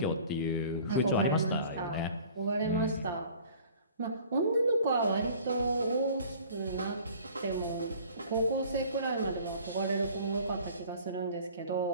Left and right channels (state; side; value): inverted; both; correlation -0.48